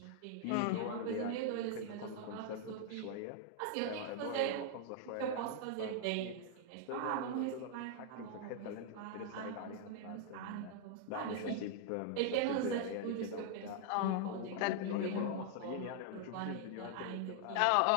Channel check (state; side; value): different; both; correlation 0.00